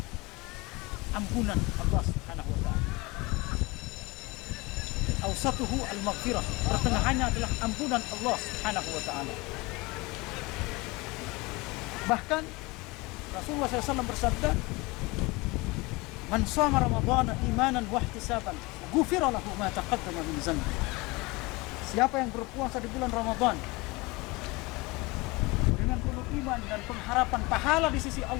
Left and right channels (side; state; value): right; quieter; 23.8 dB